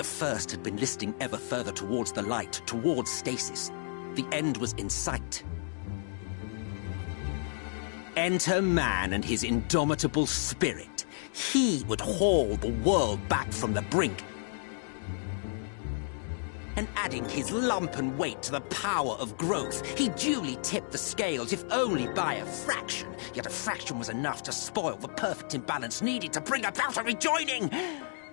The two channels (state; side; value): silent; right; digital silence